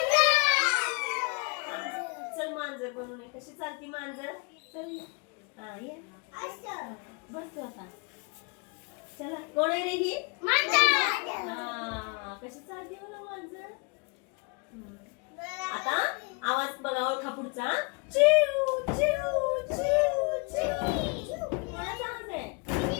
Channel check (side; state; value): right; quieter; 32.7 dB